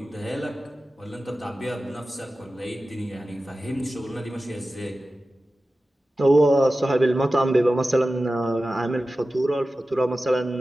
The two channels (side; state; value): both; normal; correlation 0.94